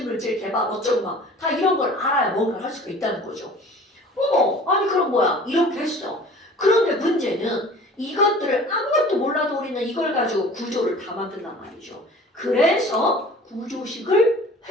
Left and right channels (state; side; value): normal; both; correlation 0.45